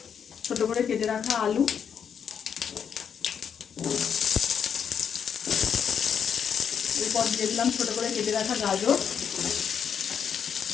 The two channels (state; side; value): quieter; right; 7.5 dB